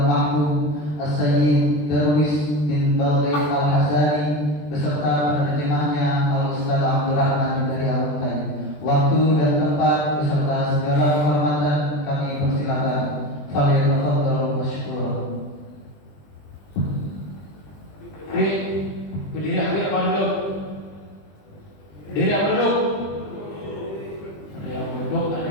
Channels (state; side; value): late; right; 20 ms